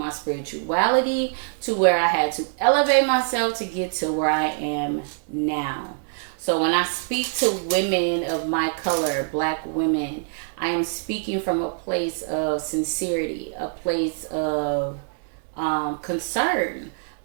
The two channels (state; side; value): silent; left; digital silence